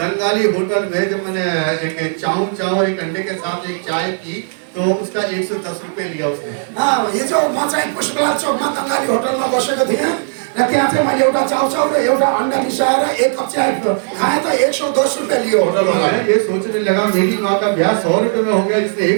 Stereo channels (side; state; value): left; silent; 66 dB below the other